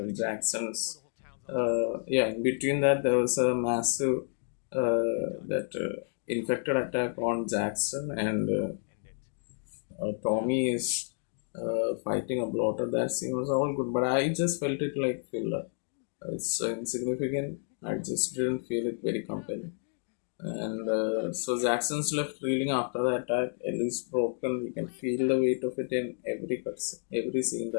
Jackson's, yeah. In between that, there was a massive that infected attack on Jackson, and Tommy is fighting a bloater. That scene was all good, but I just felt it like filler. It's so insignificant. I just didn't feel it very compelling. And so Jackson's left reeling after the attack. Ellie's broken. You can feel the weight of it in every scene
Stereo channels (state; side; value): silent; right; 58 dB below the other